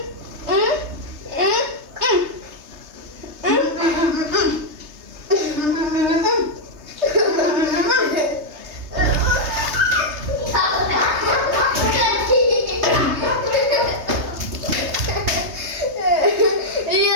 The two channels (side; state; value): left; late; 3.3 ms